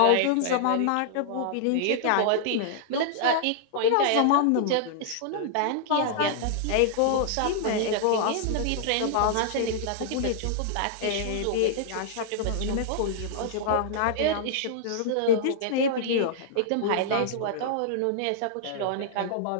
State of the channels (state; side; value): different; both; correlation -0.01